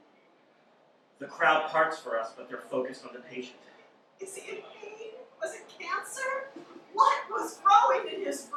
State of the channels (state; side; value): identical; both; correlation 1.00